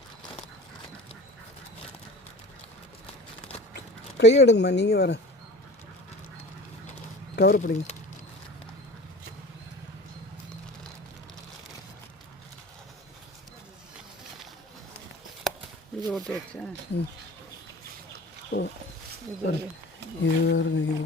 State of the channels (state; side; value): normal; both; correlation 0.39